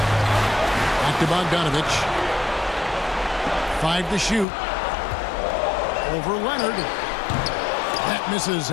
Back to Bogdanovich. 5 to shoot. Over Leonard. That misses.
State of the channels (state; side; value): drops out; right; at 4.5 s